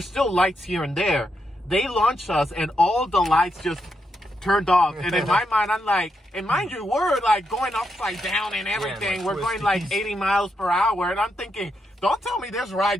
still lights here and there. They launched us, and all the lights just turned off. And in my mind, I'm like, and mind you, we're like going upside down and everything. Yeah, we're going like 80 miles per hour. And I'm thinking, don't tell me this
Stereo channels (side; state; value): both; normal; correlation 0.82